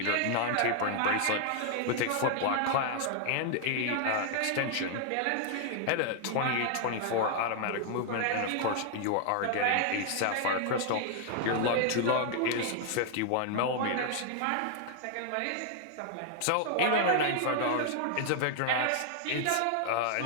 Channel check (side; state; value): both; different; correlation 0.00